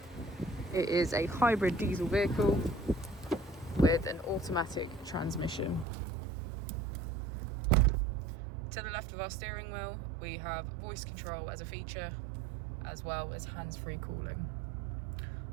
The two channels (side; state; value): left; drops out; at 5.9 s